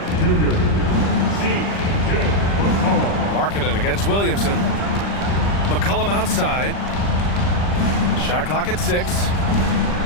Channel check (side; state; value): right; late; 40 ms